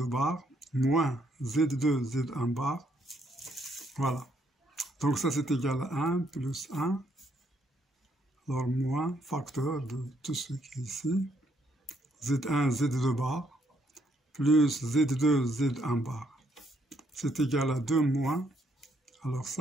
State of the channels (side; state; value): both; normal; correlation 0.72